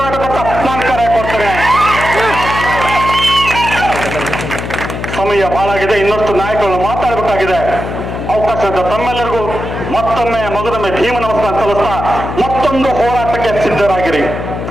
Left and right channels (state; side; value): noise; left; hum, 6 dB below the sound